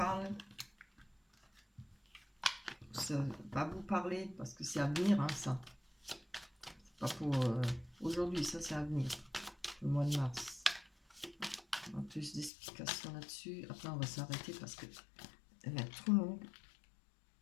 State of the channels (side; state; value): right; drops out; at 12.5 s